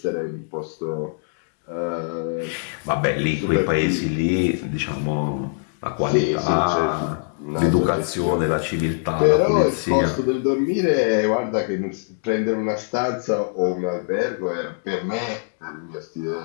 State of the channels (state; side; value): silent; right; digital silence